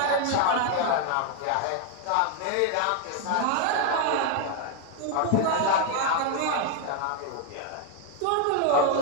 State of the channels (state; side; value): different; both; correlation 0.00